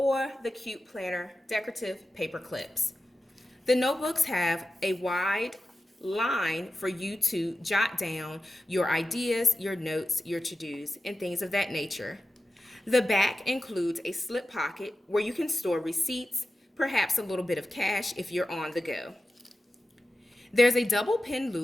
the cute planner decorative paper clips. The notebooks have a wide line for you to jot down your ideas, your notes, your to-dos, and things of that nature. The back includes a slip pocket where you can store receipts, perhaps a little bit of cash if you're on the go. There's a double pin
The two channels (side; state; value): both; normal; correlation 0.93